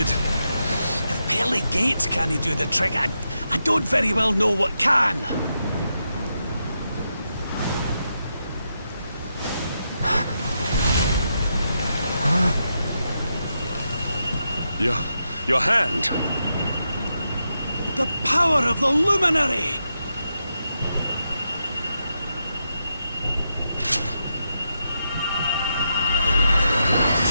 If pearly gates can't do the trick, I don't very well know what can. Your hand! The power of the luminary!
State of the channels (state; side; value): inverted; both; correlation -0.85